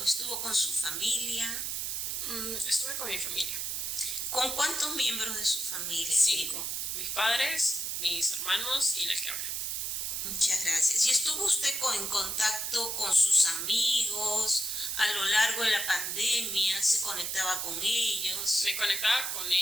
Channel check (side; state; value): right; noise; hiss, 2 dB below the sound